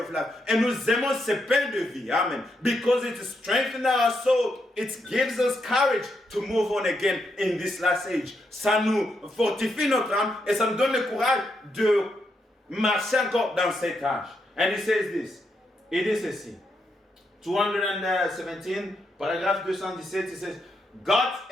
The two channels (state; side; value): normal; both; correlation 0.81